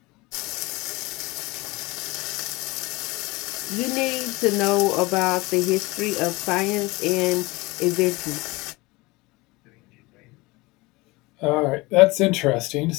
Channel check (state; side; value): quieter; right; 22.9 dB